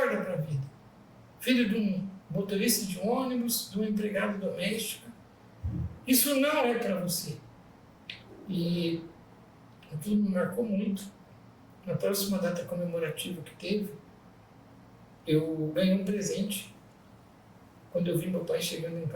para a vida. Filho de um motorista de ônibus, de um empregado doméstico, isso não é para você. E aquilo me marcou muito. Na próxima data comemorativa que teve, eu ganhei um presente. Quando eu vi meu pai chegando em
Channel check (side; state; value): both; identical; correlation 1.00